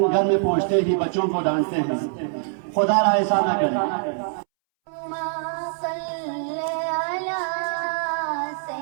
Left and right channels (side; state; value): left; silent; 63 dB below the other